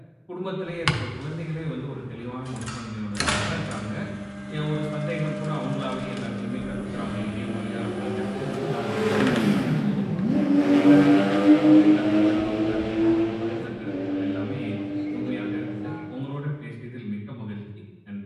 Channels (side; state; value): both; identical; correlation 1.00